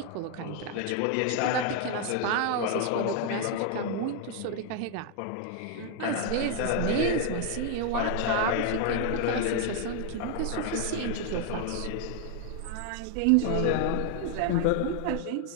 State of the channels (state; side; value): different; both; correlation 0.00